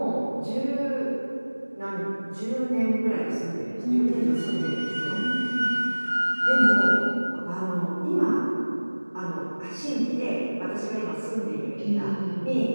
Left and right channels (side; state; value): both; inverted; correlation -1.00